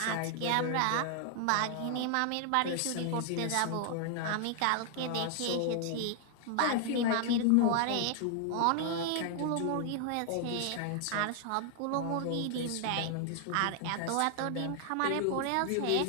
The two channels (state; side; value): different; both; correlation 0.00